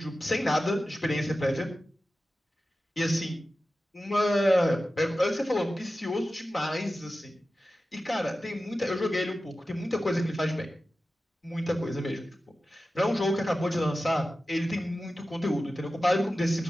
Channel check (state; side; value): normal; both; correlation 0.94